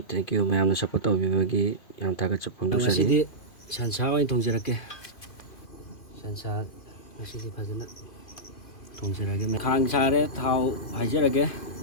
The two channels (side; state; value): right; late; 2.4 ms